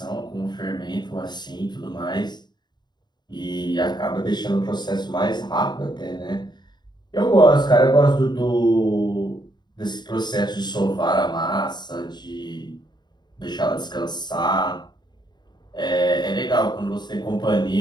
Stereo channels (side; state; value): right; late; 0.21 ms